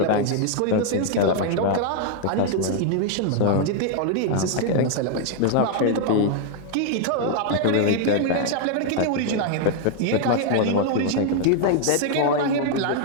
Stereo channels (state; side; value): different; both; correlation 0.00